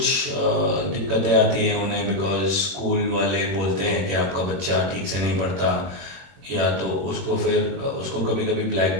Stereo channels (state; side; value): late; left; 21 ms